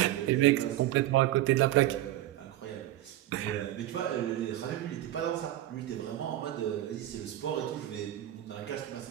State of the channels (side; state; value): left; quieter; 14.0 dB